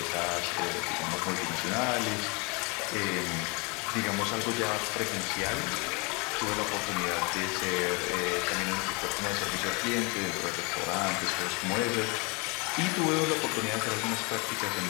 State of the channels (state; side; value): quieter; right; 30.4 dB